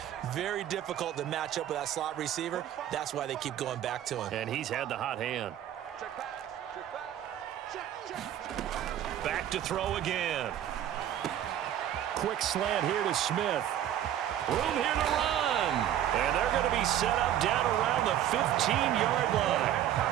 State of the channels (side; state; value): left; quieter; 11.2 dB